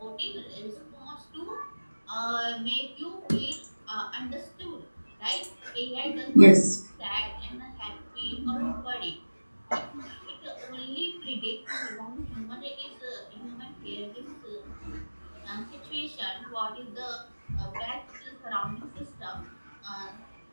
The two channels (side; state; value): both; inverted; correlation -1.00